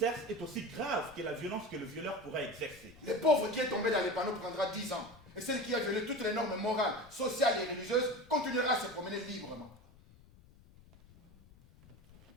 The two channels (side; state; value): left; noise; rumble, 24 dB below the sound